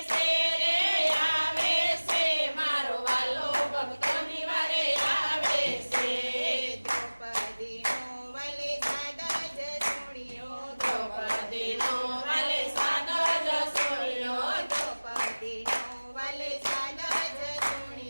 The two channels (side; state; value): both; inverted; correlation -1.00